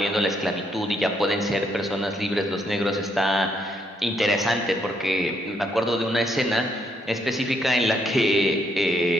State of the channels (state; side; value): normal; both; correlation 0.74